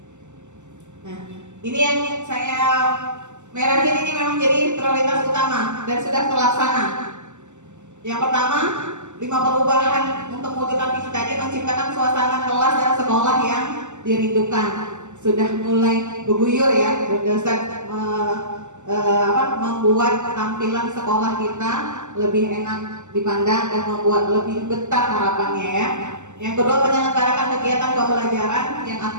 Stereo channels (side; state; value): left; late; 0.84 ms